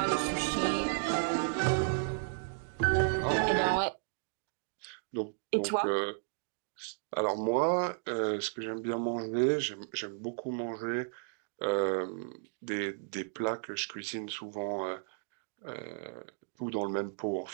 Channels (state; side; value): silent; left; digital silence